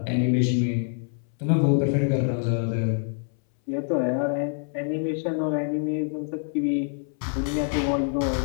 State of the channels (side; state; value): right; silent; 61 dB below the other